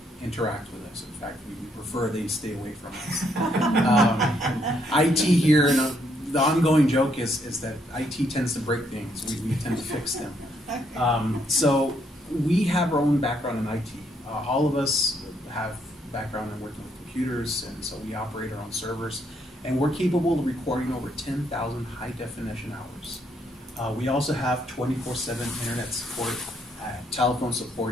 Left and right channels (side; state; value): both; normal; correlation 0.72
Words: interact with us. In fact, we prefer they stay away from us. IT here, and the ongoing joke is that IT tends to break things. We tend to fix them. So we have our own background in IT. All of us have background in working with computers, and so we operate our own servers. And we're capable of recording over 10,000 high-definition hours. We also have 24/7 internet support, telephone